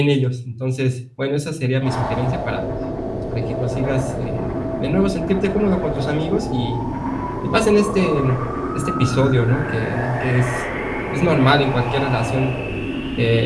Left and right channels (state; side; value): identical; both; correlation 1.00